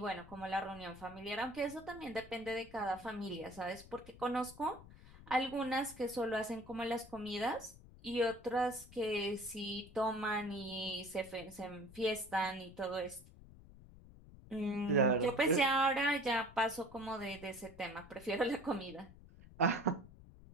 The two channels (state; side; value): noise; left; rumble, 19 dB below the sound